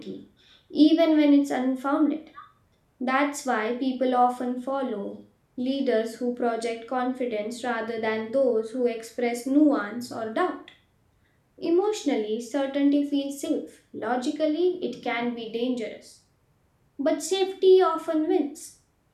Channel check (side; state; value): both; identical; correlation 1.00